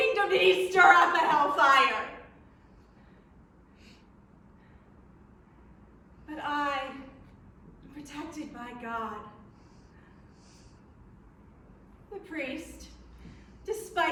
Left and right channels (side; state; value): both; identical; correlation 1.00